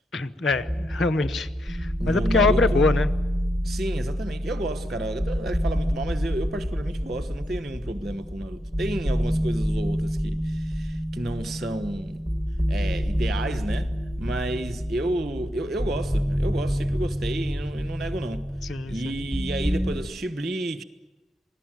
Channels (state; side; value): normal; both; correlation 0.83